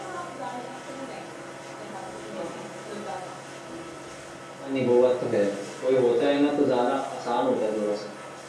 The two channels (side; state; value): both; identical; correlation 1.00